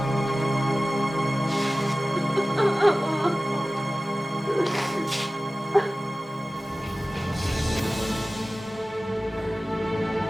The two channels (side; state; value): both; normal; correlation 0.97